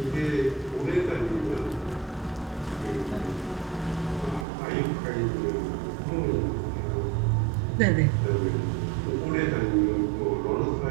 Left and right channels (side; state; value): left; drops out; at 4.5 s